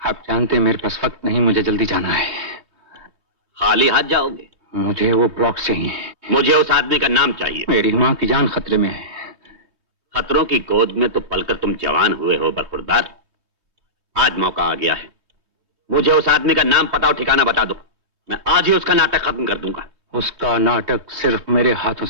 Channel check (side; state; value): left; late; 3.2 ms